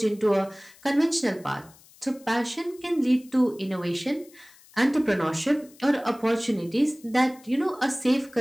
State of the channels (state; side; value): noise; left; hiss, 26 dB below the sound